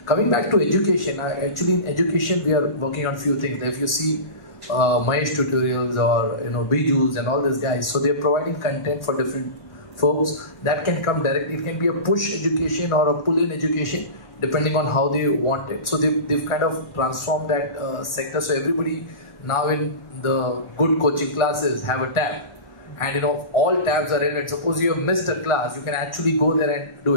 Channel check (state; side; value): late; right; 1.4 ms